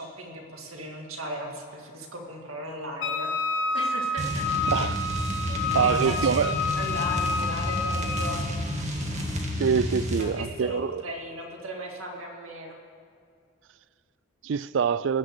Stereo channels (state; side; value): normal; both; correlation 0.20